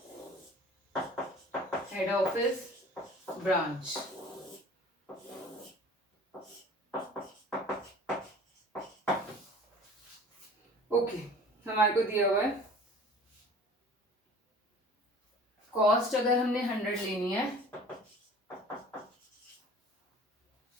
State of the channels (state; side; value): normal; both; correlation 0.45